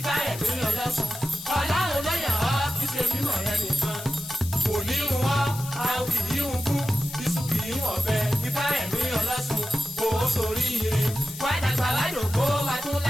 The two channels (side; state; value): left; noise; hiss, 12 dB below the sound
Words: Olosun. Ọlọ́run ló yàn ọ́ kí ṣe mímọ̀ rẹ nìkan. Kò ní ń wọ́, a kì í ń kú. Iṣu kì í wọ̀ bẹ́ẹ̀. Ifaremi Olosun. Kò ó sórí ire. Wá dàgbà wá dògbó wá tún